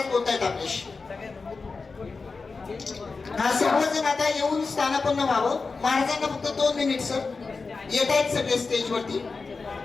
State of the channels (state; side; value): quieter; right; 4.3 dB